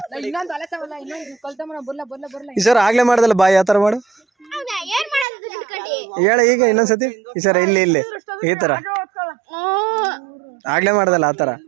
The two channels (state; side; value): drops out; left; at 5.2 s